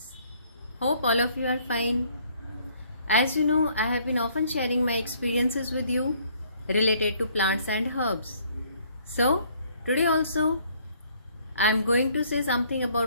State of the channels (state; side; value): inverted; both; correlation -0.62